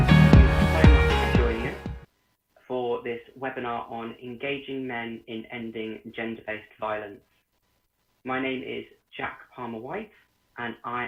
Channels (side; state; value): both; identical; correlation 1.00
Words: you so much for joining us for this webinar on engaging men in ending gender-based violence. My name is Jack Palmer-White and